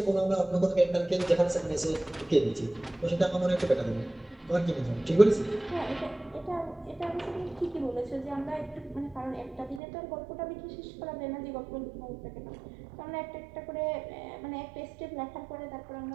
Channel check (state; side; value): drops out; left; at 9.8 s